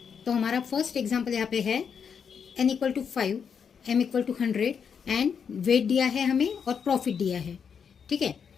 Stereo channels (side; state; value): right; quieter; 6.8 dB